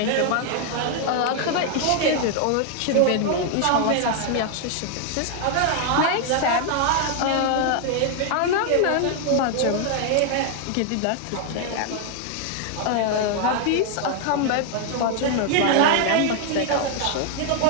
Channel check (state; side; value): different; both; correlation 0.00